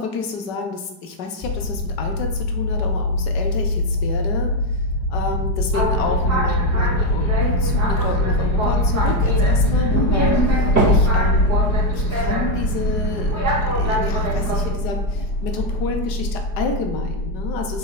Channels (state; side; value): late; right; 5.3 ms